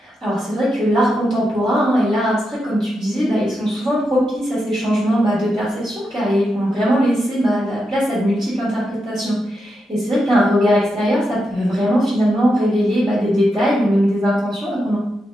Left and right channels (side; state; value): both; normal; correlation 0.86